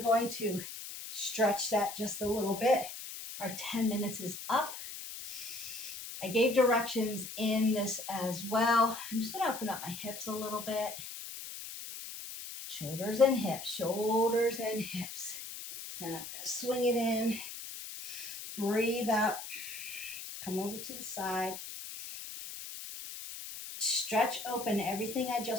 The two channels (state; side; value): noise; left; hiss, 10 dB below the sound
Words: going to stretch that just a little bit. Our 10 minutes is up. I gave directions in this as well. I'm just gonna open up my hips a little bit. Shoulders and hips, shoulders and hips. Now I'm gonna swing it in, breathe up, come over to the side, stretch open everything I